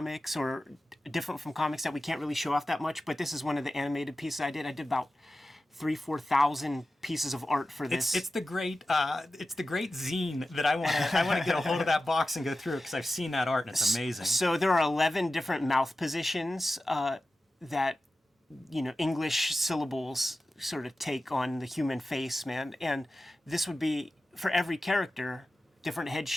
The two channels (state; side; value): normal; both; correlation 0.94